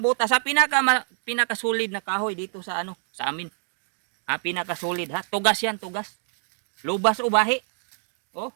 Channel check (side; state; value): left; silent; 61 dB below the other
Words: butas ha. Pinakasolid na kahoy dito sa sa amin. Ha, pinakasolid ha. Tugas yan, tugas. Lubas o bahi. Oh.